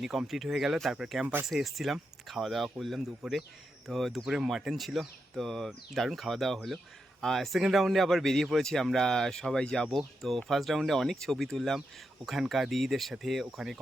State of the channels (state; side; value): normal; both; correlation 0.85